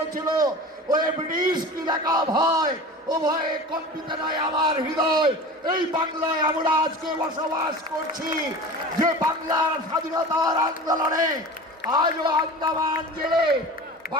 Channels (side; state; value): both; normal; correlation 0.35